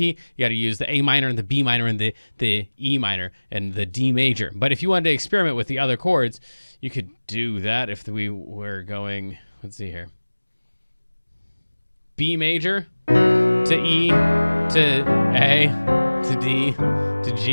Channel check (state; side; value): inverted; both; correlation -1.00